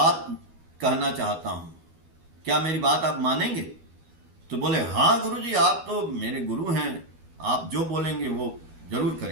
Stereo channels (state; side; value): late; left; 12 ms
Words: कहना चाहता हूं, क्या मेरी बात आप मानेंगे? तो बोले हाँ गुरु जी, आप तो मेरे गुरु हैं, आप जो बोलेंगे वो जरूर